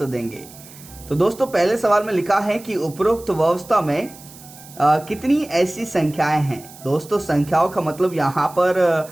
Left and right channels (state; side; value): noise; right; hiss, 20 dB below the sound